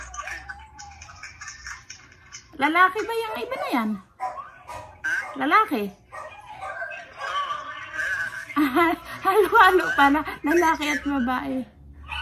Lalaki ba yung iba na yan? Lalaki? Halo-halo pala. Lalaki at babae.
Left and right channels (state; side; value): identical; both; correlation 1.00